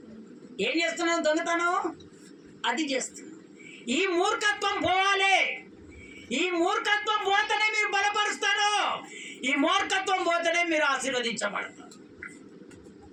ఏం చేస్తున్నావు? దొంగతనం అది చేస్తున్నావు. ఈ మూర్ఖత్వం పోవాలి. ఈ మూర్ఖత్వం పోతేనే మీరు బలపరుస్తారు. ఈ మూర్ఖత్వం పోతేనే మీరు ఆశీర్వదించబడతారు.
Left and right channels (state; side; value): identical; both; correlation 1.00